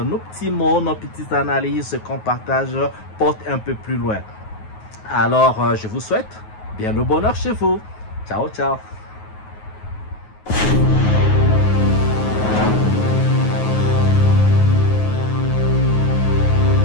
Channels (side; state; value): right; late; 9.4 ms